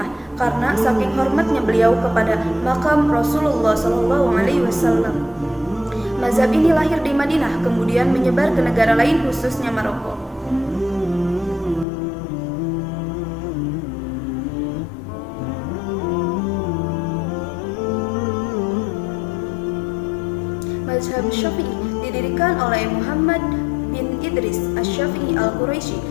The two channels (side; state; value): right; drops out; at 11.9 s